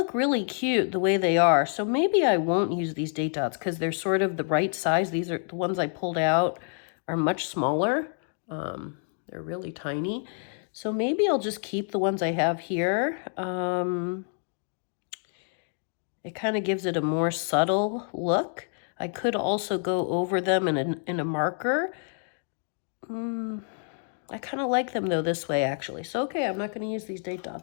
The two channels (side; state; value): right; silent; 56 dB below the other